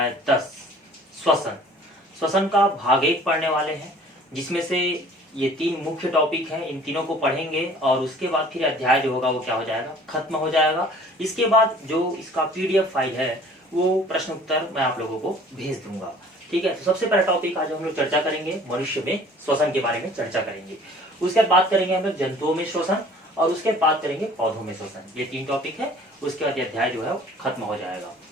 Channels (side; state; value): both; normal; correlation 0.51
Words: 10 श्वसन। श्वसन का भाग 1 पढ़ने वाले हैं, जिसमें से ये 3 मुख्य टॉपिक हैं। इन तीनों को पढ़ेंगे और उसके बाद फिर अध्याय जो होगा वो क्या हो जाएगा, खत्म हो जाएगा। इसके बाद जो इसका पीडीएफ फाइल है वो प्रश्न उत्तर मैं आप लोगों को भेज दूंगा। ठीक है, तो सबसे पहला टॉपिक आज हम लोग चर्चा करेंगे मनुष्य में श्वसन के बारे में चर्चा करेंगे। उसके बाद बात करेंगे हम लोग जंतुओं में श्वसन और उसके बाद करेंगे पौधों में श्वसन। ये 3 टॉपिक है, उसके बाद अध्याय जो है वो खत्म हो जाएगा।